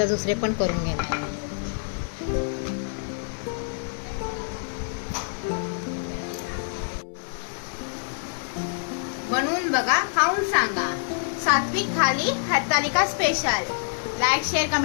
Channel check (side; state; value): right; silent; 61 dB below the other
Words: दुसरे पण करून घेणार. बनवून बघा, खाऊन सांगा. सात्विक thali Hartalika special. Like share